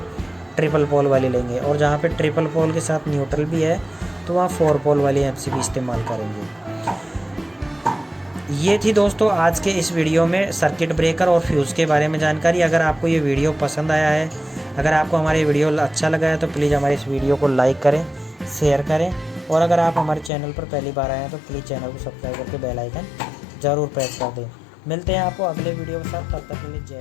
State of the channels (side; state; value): right; drops out; at 20.3 s